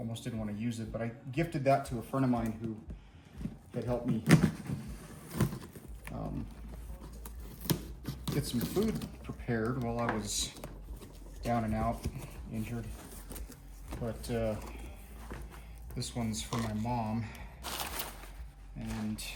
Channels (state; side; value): identical; both; correlation 1.00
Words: didn't want to use it, but I gifted that to a friend of mine who had helped me get some food prepared while I was down and out, injured. But this one's for my mom, and